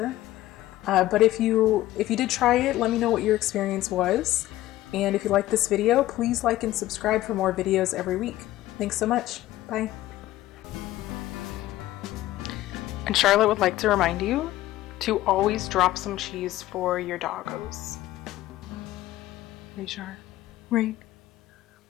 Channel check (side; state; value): right; quieter; 15.3 dB